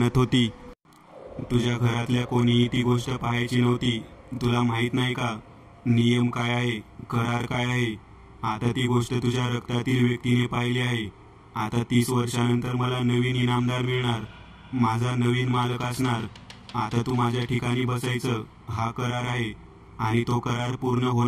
होती, तुझ्या घरातल्या कोणीही ती गोष्ट पाहायची नव्हती. तुला माहित नाही का नियम काय आहे, करार काय आहे? आता ती गोष्ट तुझ्या रक्तातील व्यक्तीने पाहिली आहे. आता 30 वर्षानंतर मला नवीन इनामदार मिळणार, माझा नवीन मालक असणार. आता तू माझ्या ठिकाणी बसायचं, हा करार आहे आणि तो करार पूर्ण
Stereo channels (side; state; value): both; identical; correlation 1.00